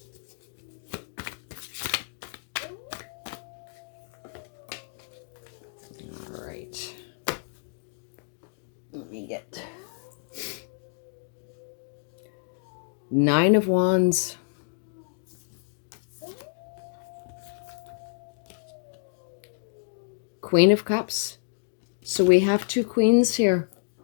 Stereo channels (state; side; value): silent; right; digital silence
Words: All right. Let me get 9 of Wands. Queen of Cups. So we have 2 queens here.